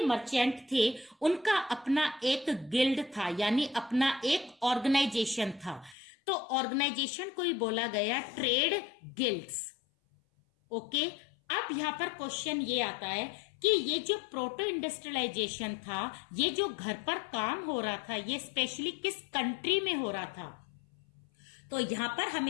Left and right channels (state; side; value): drops out; right; at 6.0 s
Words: मर्चेंट थे उनका अपना एक गिल्ड था, यानी अपना एक ऑर्गेनाइजेशन था। तो ऑर्गेनाइजेशन को ही बोला गया ट्रेड गिल्ड्स। ओके। अब यहां पर क्वेश्चन ये आता है कि ये जो प्रोटो इंडस्ट्रियलाइजेशन था, ये जो घर पर काम हो रहा था, ये स्पेशली किस कंट्री में हो रहा था? तो यहां पर